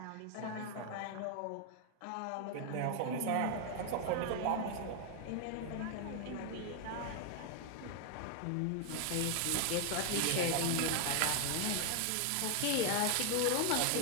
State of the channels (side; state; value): both; different; correlation 0.00